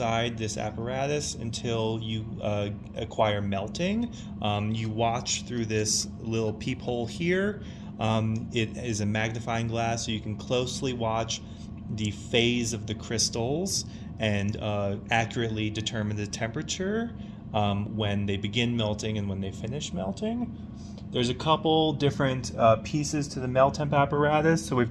this apparatus until you acquire melting. You watch through this little peephole here. It is a magnifying glass, so you can closely watch the phase of the crystals and accurately determine the temperature when they begin melting and when they finish melting. There's a couple different pieces to the MELTEMP apparatus. So we've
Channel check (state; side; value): identical; both; correlation 1.00